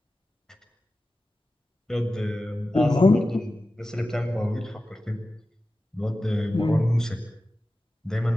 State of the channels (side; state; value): both; normal; correlation 0.94